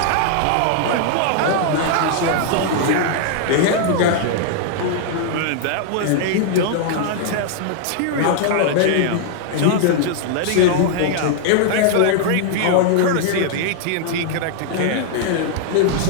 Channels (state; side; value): different; both; correlation 0.00